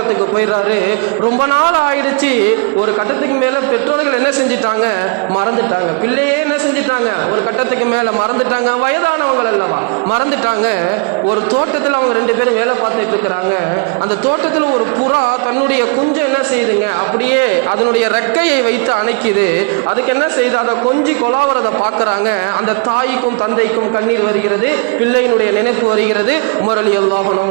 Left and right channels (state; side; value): quieter; left; 33.4 dB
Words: போயிடுறாரு. ரொம்ப நாள் ஆயிடுச்சு. ஒரு கட்டத்துக்கு மேல பெற்றோர்கள் என்ன செஞ்சிட்டாங்க? மறந்துட்டாங்க. பிள்ளையே என்ன செஞ்சிட்டாங்க? ஒரு கட்டத்துக்கு மேல மறந்துட்டாங்க. வயதானவங்கள் அல்லவா, மறந்துட்டாங்க. ஒரு தோட்டத்தில் அவங்க ரெண்டு பேரும் வேலை பார்த்துட்டு இருக்கிறாங்க. அந்த தோட்டத்தில் ஒரு புறா தன்னுடைய குஞ்சை என்ன செய்யுதுங்க? அப்படியே அதனுடைய ரெக்கையை வைத்து அணைக்குது. அதுக்கு என்ன செய்யுது? அதை கொஞ்சி கொலாவறதை பார்க்கறாங்க. அந்த தாய்க்கும் தந்தைக்கும் கண்ணீர் வருகிறது, பிள்ளையினுடைய நினைப்பு வருகிறது. உமர் ரலியல்லாஹு